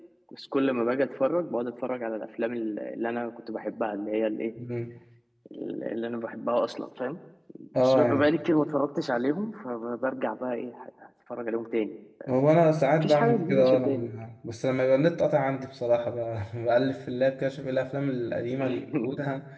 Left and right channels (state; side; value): identical; both; correlation 1.00